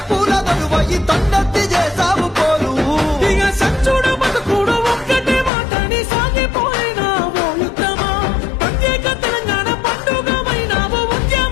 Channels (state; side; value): drops out; right; at 5.5 s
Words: బరువ ఈ తండెత్తి చేసావు పోరు. ఇక సచ్చుడు బతుకుడు ఒక్కటే మాటని సాగిపోయినావు యుద్ధమా. ప్రత్యేక తెలంగాణ పండుగమైనావు